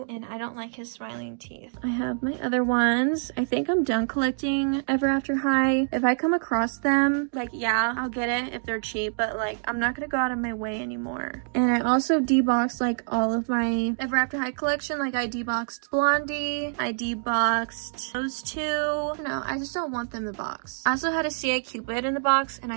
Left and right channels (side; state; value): left; silent; digital silence